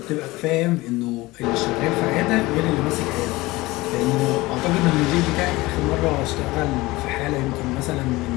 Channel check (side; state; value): right; quieter; 20.5 dB